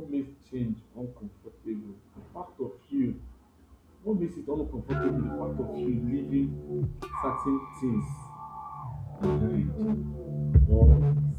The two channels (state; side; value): identical; both; correlation 1.00